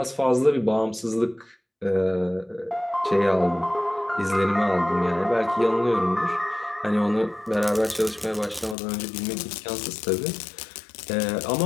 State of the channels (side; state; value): right; drops out; at 8.8 s